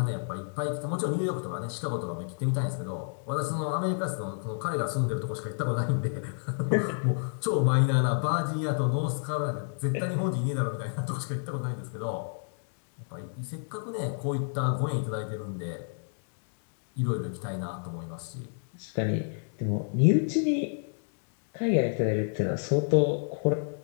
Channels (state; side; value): silent; right; digital silence